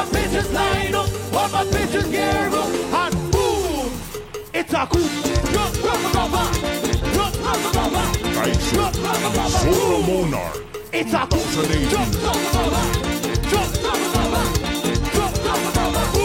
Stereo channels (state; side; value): identical; both; correlation 1.00